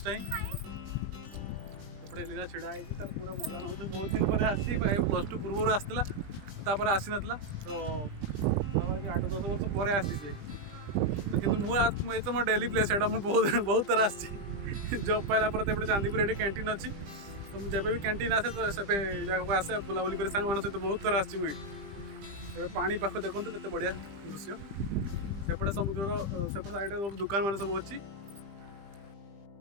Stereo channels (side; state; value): left; late; 20 ms